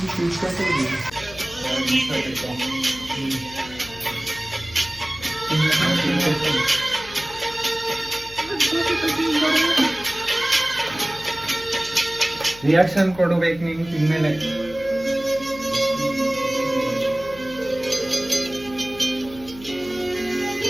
ರಿಯಾಕ್ಷನ್ ಕೊಡಬೇಕು ನೀನು ತಿಂದ್ಮೇಲೆ.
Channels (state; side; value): noise; left; hum, 19 dB below the sound